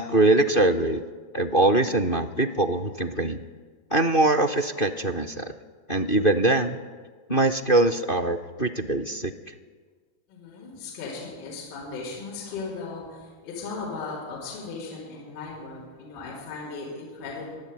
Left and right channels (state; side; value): late; right; 2.5 ms